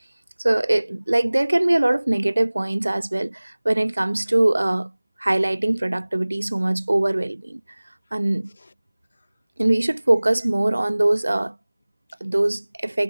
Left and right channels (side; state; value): both; inverted; correlation -1.00